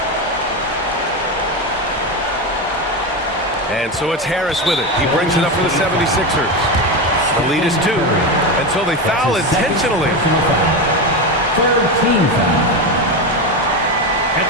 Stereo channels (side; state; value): both; normal; correlation 0.16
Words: And so it's Harris with it. He brings it up for the 76ers. The lead is 2. And so they foul intentionally. 13 foul. At